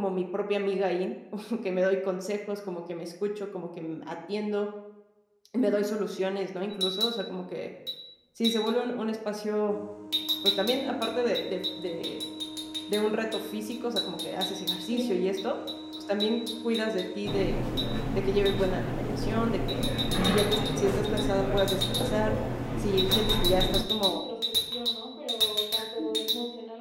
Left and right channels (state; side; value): identical; both; correlation 1.00